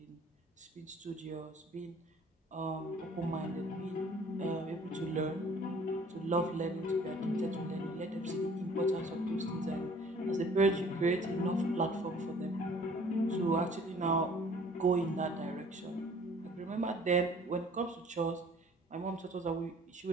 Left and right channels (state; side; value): normal; both; correlation 0.53